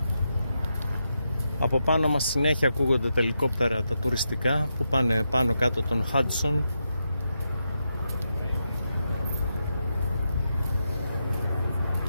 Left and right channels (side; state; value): both; inverted; correlation -0.85